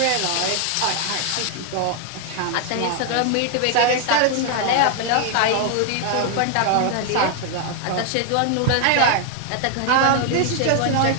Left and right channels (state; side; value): different; both; correlation 0.00